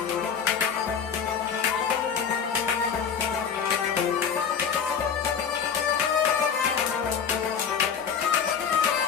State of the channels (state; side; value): quieter; right; 7.0 dB